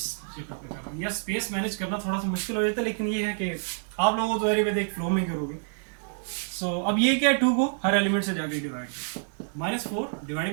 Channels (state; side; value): silent; left; digital silence